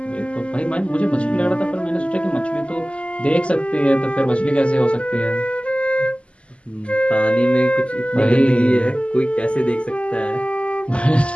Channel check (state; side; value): late; right; 0.056 ms